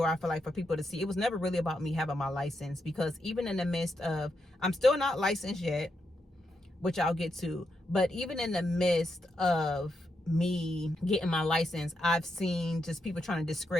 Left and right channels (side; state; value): both; normal; correlation 0.83